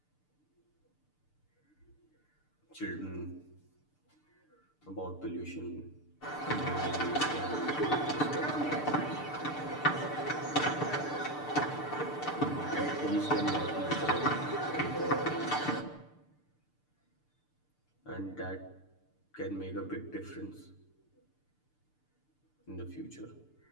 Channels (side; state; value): right; late; 6.7 ms